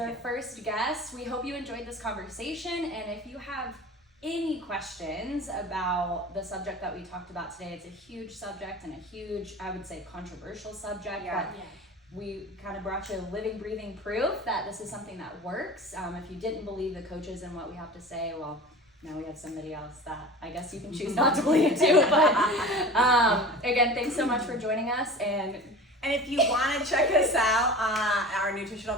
first guest, we hope you enjoyed this conversation, and if you have any questions about the subject that we talked about today, it's a huge subject and a huge, I would say, controversial subject, Yeah. but we kind of brought you living, breathing proof that this is something that works. If you didn't believe the coaches and what we have to say, well, now we have somebody else that I guess you can choose not to believe too. But again, thanks so much for joining us. And if you want to check us out, our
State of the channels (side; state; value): both; normal; correlation 0.37